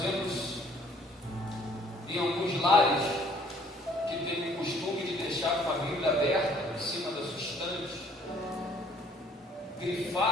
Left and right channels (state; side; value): normal; both; correlation 0.60